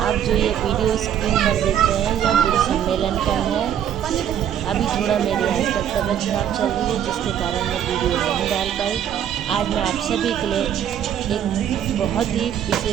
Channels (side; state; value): left; quieter; 9.8 dB